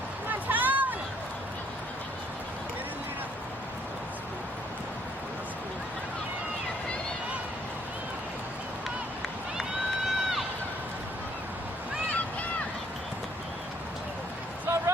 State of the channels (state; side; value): normal; both; correlation 0.66